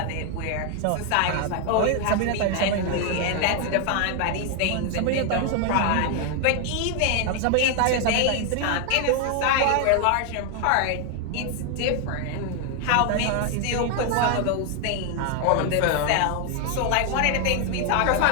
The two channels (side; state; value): both; different; correlation 0.00